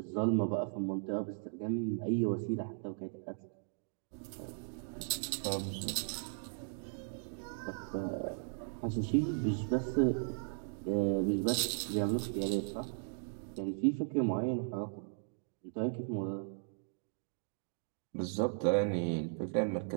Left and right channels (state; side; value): silent; left; digital silence